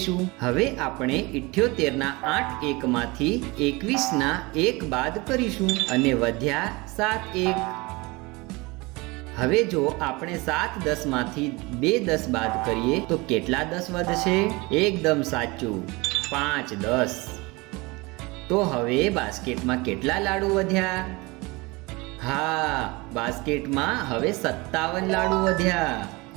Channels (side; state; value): left; quieter; 24.4 dB